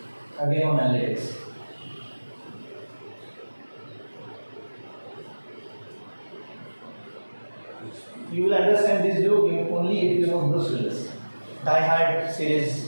Again on analytics. You will understand this joke only if you know Bruce Willis. Die Hard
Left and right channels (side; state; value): both; inverted; correlation -1.00